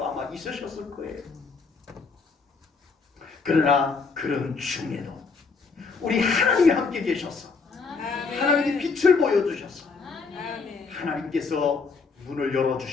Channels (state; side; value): quieter; right; 4.7 dB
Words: 아마 있으셨을 거예요. 그러나 그런 중에도 우리 하나님이 함께 계셔서 아멘. 하나님이 빛을 보여주셔서 아멘. 하나님께서 문을